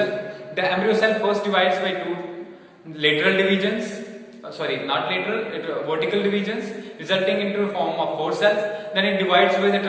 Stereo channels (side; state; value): both; identical; correlation 1.00